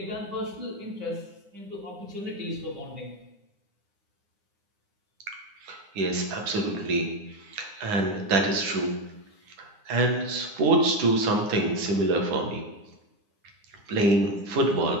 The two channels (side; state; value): left; late; 9.8 ms